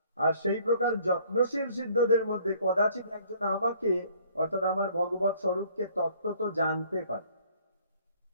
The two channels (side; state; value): both; inverted; correlation -0.59